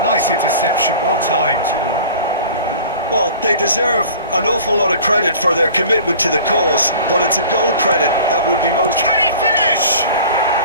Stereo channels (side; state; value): both; inverted; correlation -0.43